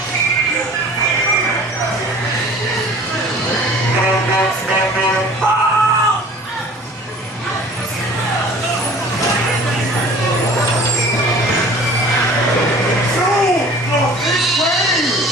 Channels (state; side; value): normal; both; correlation 0.46